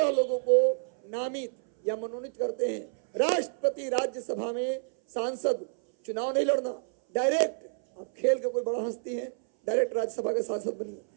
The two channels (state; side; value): silent; left; 59 dB below the other